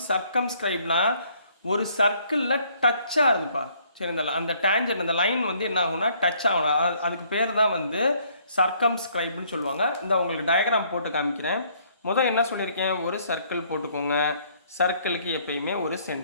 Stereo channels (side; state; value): both; inverted; correlation -0.64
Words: circumscribeனா ஒரு சர்க்கிளில் டச்சாக இருந்துப்பா. சரி, அந்த டேஞ்சர் அந்த லைன் வந்து என்ன ஆகும்னா டச் ஆகணும். அதுக்கு பேர் தான் வந்து சர்க்கம்ஸ்கிரைப்னு சொல்லுவாங்க. இந்த உங்களுக்கு டயக்ராம் போட்டு காமிக்கிறேன். முதல் என்ன சொல்லியிருக்கேன், ஒரு சர்க்கிள் போட்டுக்கோங்க. சர்க்கிளுக்கு எப்பயுமே ஒரு